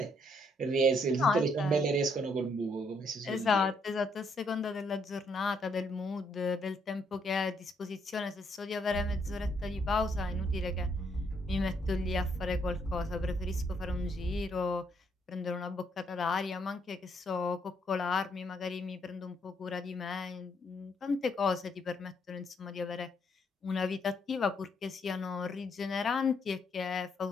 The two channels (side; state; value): both; normal; correlation 0.72